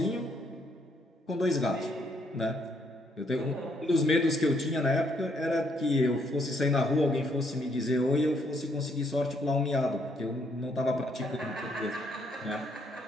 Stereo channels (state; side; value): normal; both; correlation 0.71